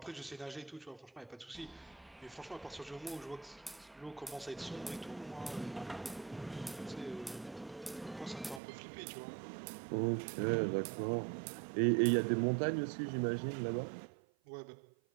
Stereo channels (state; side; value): drops out; left; at 8.6 s